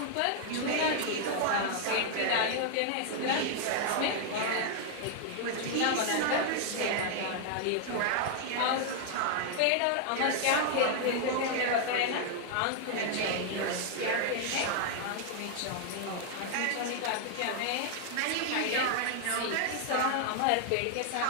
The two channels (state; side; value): different; both; correlation 0.00